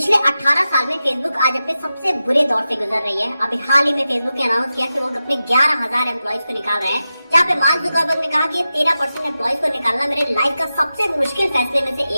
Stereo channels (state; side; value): inverted; both; correlation -0.92